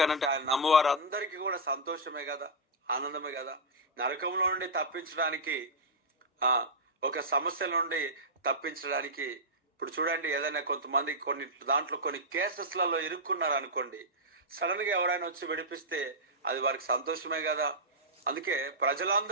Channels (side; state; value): both; normal; correlation -0.07